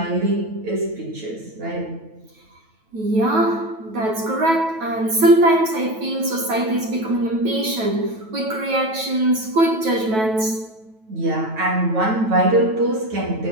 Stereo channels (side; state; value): left; late; 9.2 ms